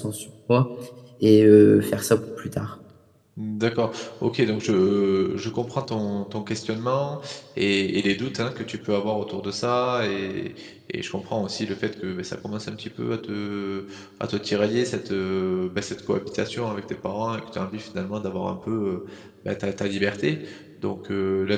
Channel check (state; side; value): identical; both; correlation 1.00